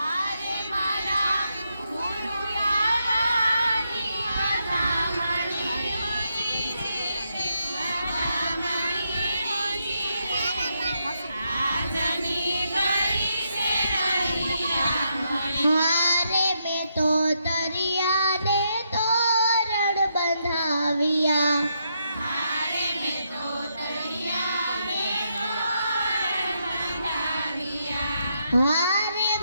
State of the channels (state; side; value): inverted; both; correlation -0.80